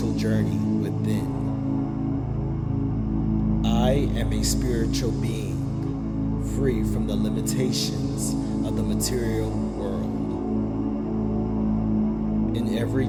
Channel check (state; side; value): identical; both; correlation 1.00